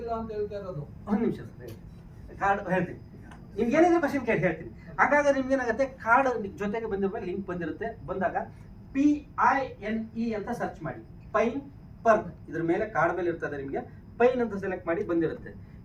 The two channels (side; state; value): both; identical; correlation 1.00